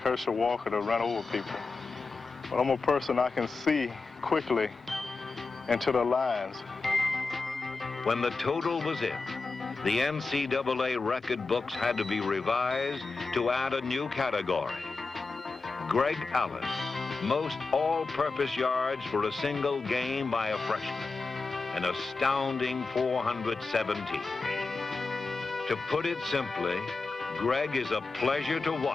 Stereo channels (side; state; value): right; quieter; 4.0 dB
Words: Herschel Walker to run over people. But I'm a person I can see quickly into the lines. When the total was in, the NCAA record books had to be revised to add a new category. Greg Allen, most all-purpose yards for a single game by a freshman, an astounding 417. To put it simply, Greg is a pleasure to